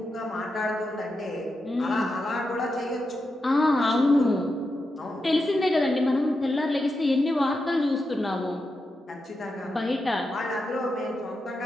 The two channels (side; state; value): both; normal; correlation 0.87